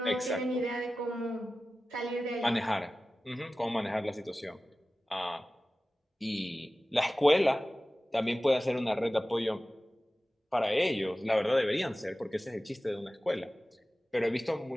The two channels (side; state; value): both; normal; correlation 0.96